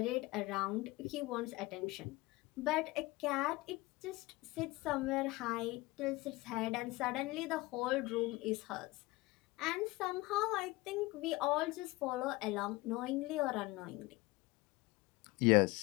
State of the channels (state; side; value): quieter; right; 21.4 dB